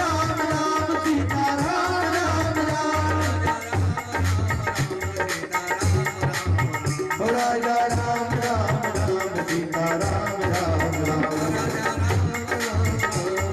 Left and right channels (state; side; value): identical; both; correlation 1.00